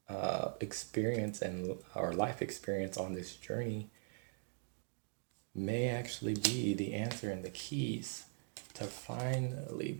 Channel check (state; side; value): silent; left; 50 dB below the other